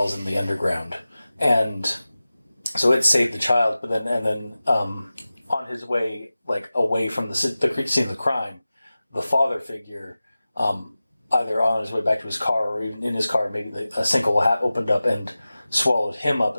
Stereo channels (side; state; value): both; inverted; correlation -0.96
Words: in the underground, and so it saved the child. But then on his way, like away from the scene of the crime, the father figure, either on his way back to his car or even in his car, maybe a sinkhole opened up and swallowed him up,